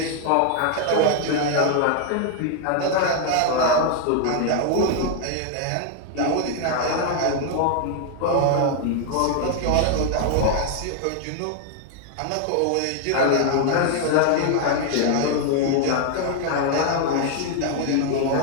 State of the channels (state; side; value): different; both; correlation 0.00